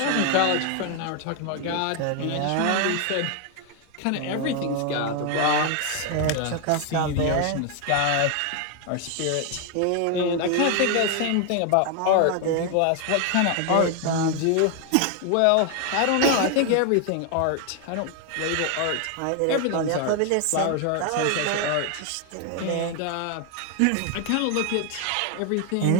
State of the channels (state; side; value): different; both; correlation 0.00